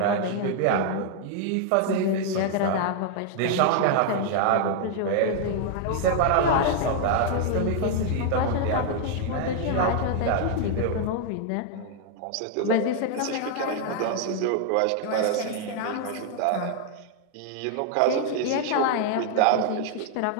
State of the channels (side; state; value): both; different; correlation 0.00